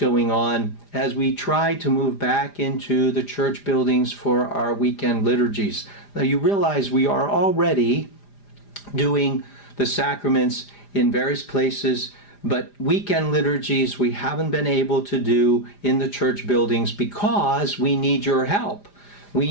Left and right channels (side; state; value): right; late; 4.9 ms